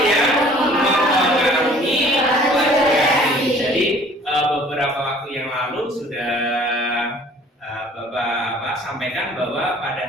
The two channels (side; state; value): both; normal; correlation 0.52